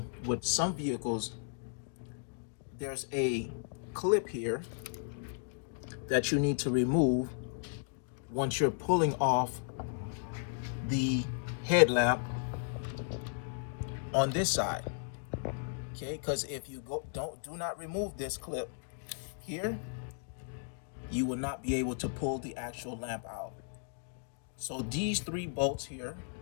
with some vehicles, there's a clip here that you need to remove once you're pulling off the headlamp on this side. Okay, because if you do not remove this clip here, you will not be able to pull the actual lamp out. So these three bolts here,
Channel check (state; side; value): silent; right; digital silence